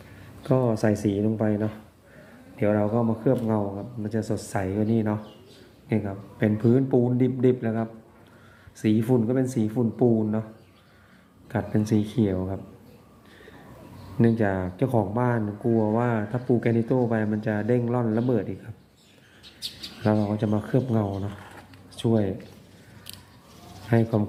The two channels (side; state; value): both; identical; correlation 1.00